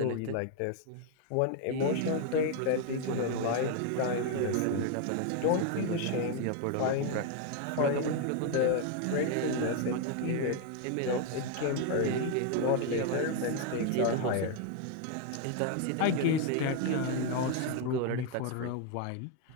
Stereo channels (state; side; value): different; both; correlation 0.00